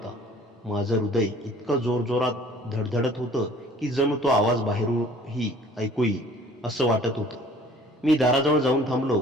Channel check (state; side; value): normal; both; correlation 0.52